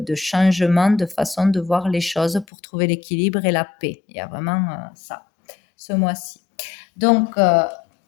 changement de façon de voir les choses pour trouver l'équilibre et la paix. Il y a vraiment ça, ce mois-ci. Donc,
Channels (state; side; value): drops out; right; at 2.5 s